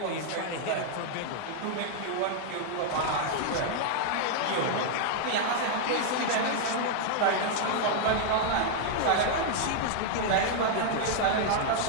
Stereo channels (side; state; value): both; different; correlation 0.00